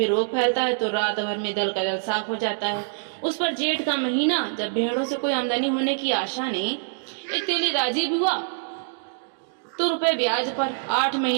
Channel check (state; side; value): silent; left; digital silence